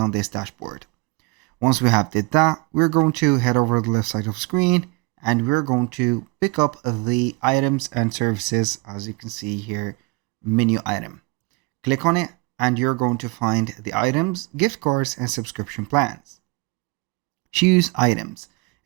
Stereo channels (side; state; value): left; quieter; 27.5 dB